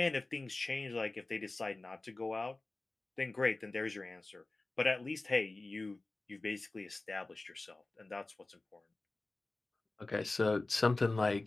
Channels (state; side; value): quieter; right; 3.1 dB